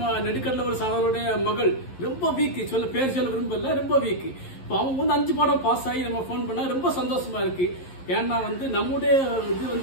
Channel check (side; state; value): right; late; 11 ms